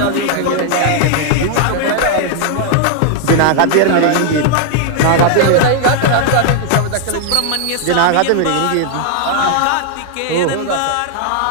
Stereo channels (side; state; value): both; different; correlation 0.00